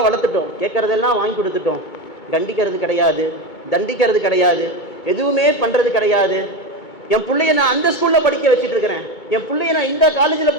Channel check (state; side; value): late; right; 2.2 ms